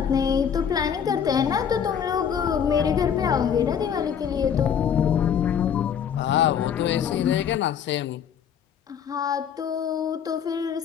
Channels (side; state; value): right; quieter; 8.0 dB